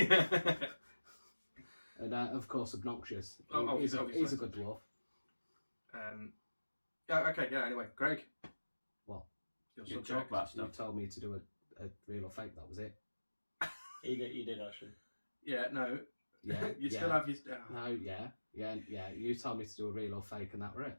and of course obnoxious. Oh, He's a obviously. good dwarf. Yeah. Okay. Yeah. Anyway, Greg. What? Your You subject. talk about You stuff. told me to do a real or fake. That was it. You did actually. Yeah. No. Yeah. You yeah. still have your. No. Yeah. You told me to do a real or fake, and that were it.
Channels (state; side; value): inverted; both; correlation -1.00